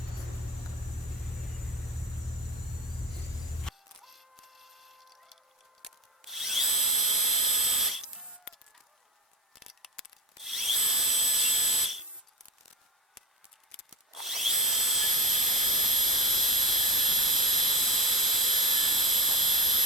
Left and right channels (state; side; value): normal; both; correlation 0.35